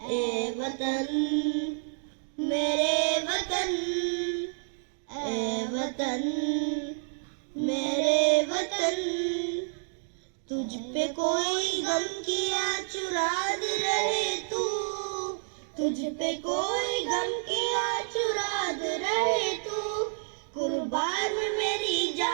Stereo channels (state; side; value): silent; left; digital silence